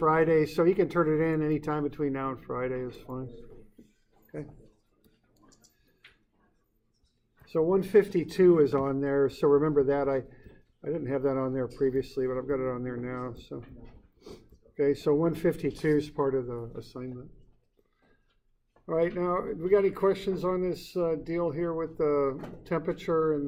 so you can turn it in anytime between now and Friday is fine. Okay. So 152 is on there, so remember that. I didn't have that on there previously, but I've got it on there now. So okay, so 152 is part of the assignment. All right, now, we got any questions on this deal here with the temperature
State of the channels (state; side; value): identical; both; correlation 1.00